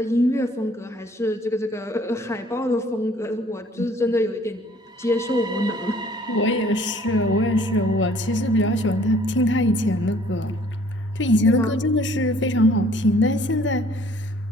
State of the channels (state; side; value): normal; both; correlation 0.57